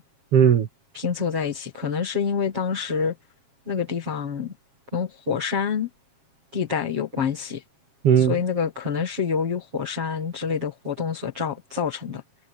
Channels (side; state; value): left; late; 7.4 ms